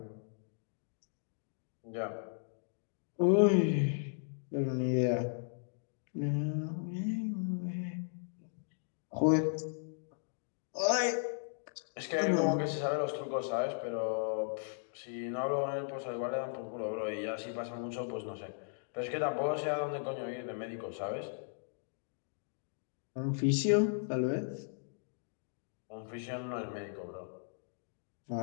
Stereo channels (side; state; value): right; silent; digital silence